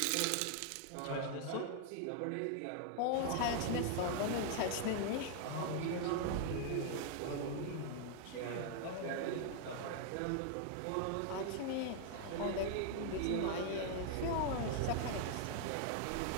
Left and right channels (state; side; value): different; both; correlation 0.00